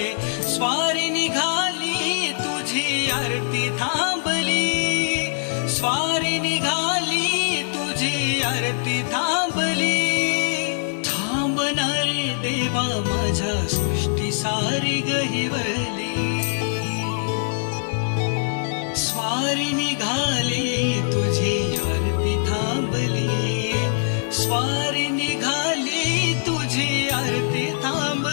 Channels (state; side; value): silent; right; 55 dB below the other